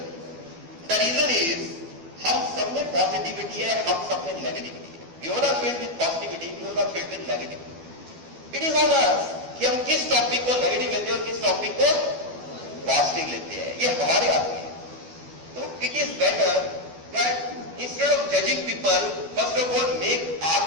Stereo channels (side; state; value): left; late; 12 ms